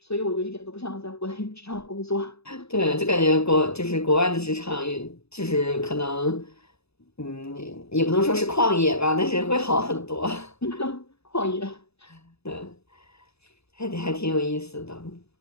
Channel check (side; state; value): right; late; 0.79 ms